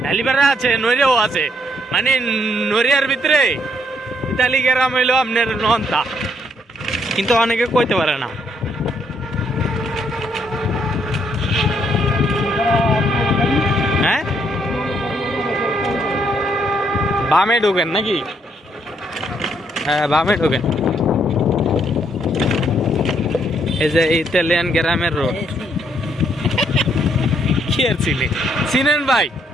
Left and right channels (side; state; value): both; normal; correlation 0.72